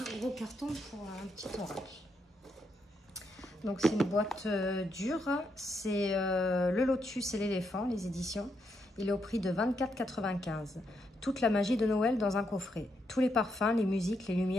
gros carton pour un petit oracle. Donc, c'est une boîte dure. C'est le Lotus et l'éléphant, les éditions. Il est au prix de 24,95 €. Toute la magie de Noël dans un coffret. Tous les parfums, les musiques, les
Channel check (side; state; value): both; normal; correlation 0.79